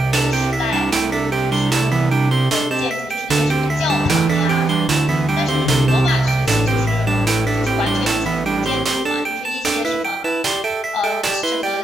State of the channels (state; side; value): normal; both; correlation 0.83